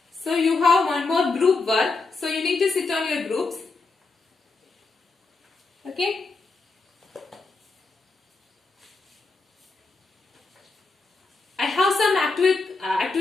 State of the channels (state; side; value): quieter; right; 3.8 dB